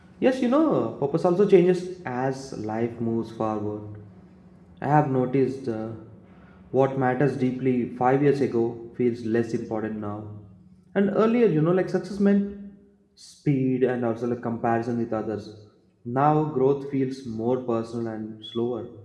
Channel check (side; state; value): both; identical; correlation 1.00